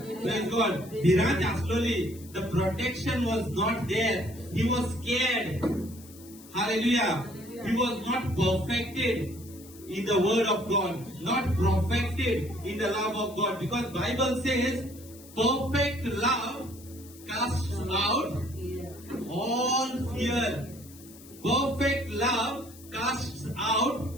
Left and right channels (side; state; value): left; noise; hiss, 20 dB below the sound